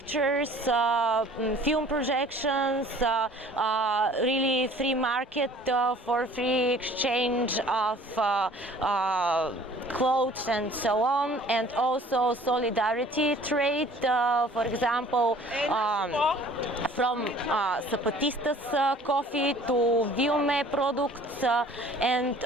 film projections, really free market for free exchange of clothes and so on, and also solidarity trade, for example, from Zapatistas coffee to Viume products, and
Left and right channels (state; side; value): normal; both; correlation 0.51